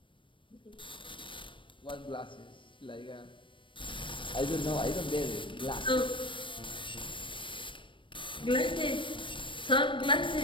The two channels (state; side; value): late; right; 0.25 ms